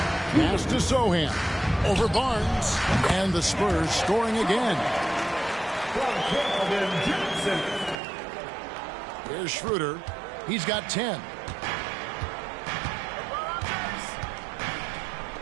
Pass to Sohan. Over Barnes. And the Spurs scoring again. Here's Schroeder. He's got 10.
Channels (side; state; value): left; drops out; at 8.0 s